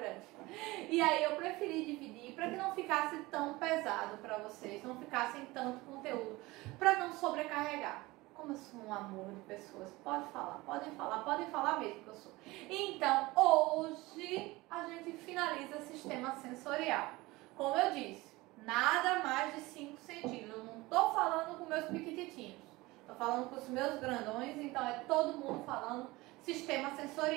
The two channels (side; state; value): left; quieter; 21.0 dB